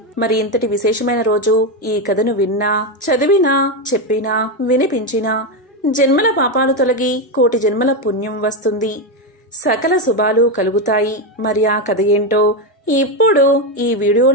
మరి ఇంతటి విశేషమైన రోజు ఈ కథను విన్నా, చదివినా, చెప్పినా, వినిపించినా జన్మల పాపాలు తొలగి కోటి జన్మల పుణ్యం వస్తుంది, సకల శుభాలు కలుగుతాయి. మరి ఆ కథ ఏంటో ఇప్పుడు ఈ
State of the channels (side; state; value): both; normal; correlation 0.09